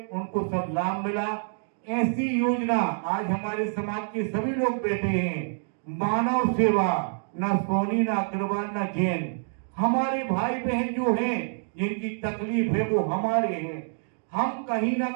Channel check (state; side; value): silent; left; digital silence